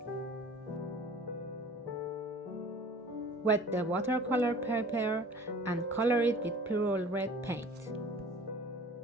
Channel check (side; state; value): both; normal; correlation 0.46